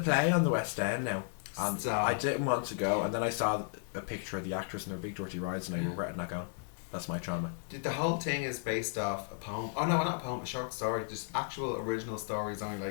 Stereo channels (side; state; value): right; silent; digital silence